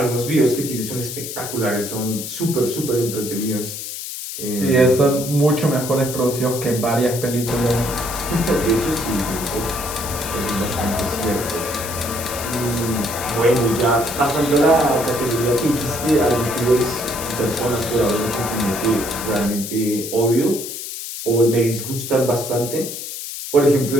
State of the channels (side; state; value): left; noise; hiss, 8 dB below the sound